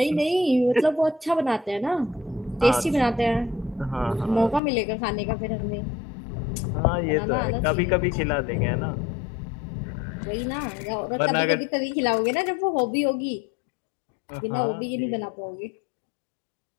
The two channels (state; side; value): drops out; right; at 4.6 s